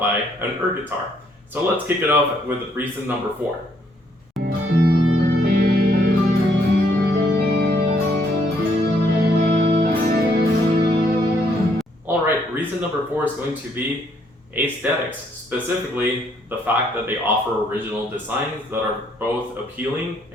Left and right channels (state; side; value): normal; both; correlation 0.69